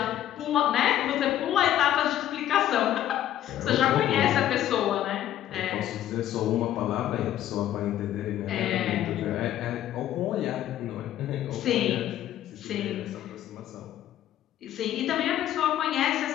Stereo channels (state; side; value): quieter; right; 12.1 dB